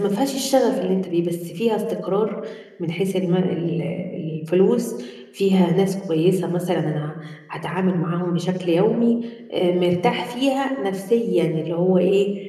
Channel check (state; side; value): identical; both; correlation 1.00